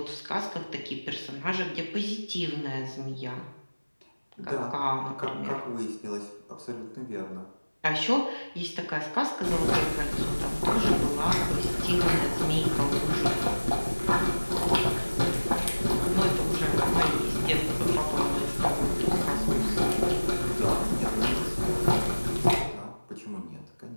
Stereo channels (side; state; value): both; inverted; correlation -1.00